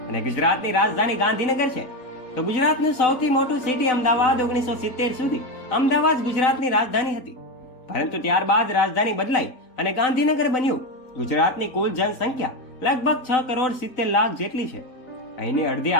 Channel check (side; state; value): right; late; 3.9 ms